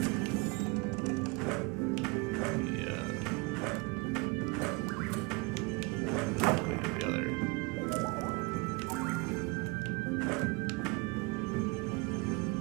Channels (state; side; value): quieter; left; 27.3 dB